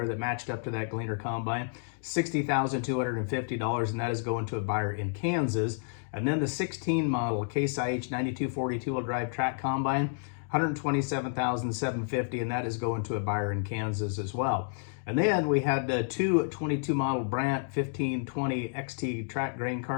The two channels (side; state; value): right; silent; digital silence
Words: that matched up to that Gleaner combine, $60,250, and that is going to a buyer in Kansas. And then the 16 model Case IH 9240 two-wheel drive track combine, $127,750, and that is going to a buyer in Kansas as well. And then we had two 22 model Brandt 1520 XT track grain